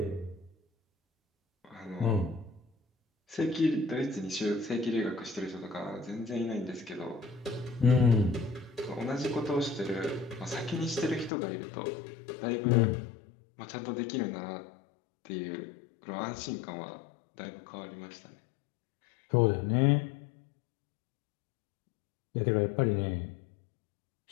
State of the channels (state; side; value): drops out; right; at 11.3 s